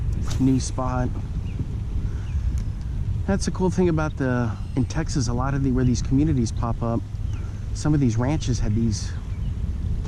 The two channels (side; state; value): both; identical; correlation 1.00